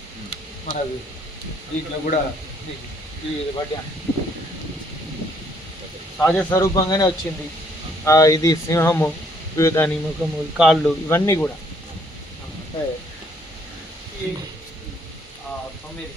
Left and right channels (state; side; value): normal; both; correlation 0.66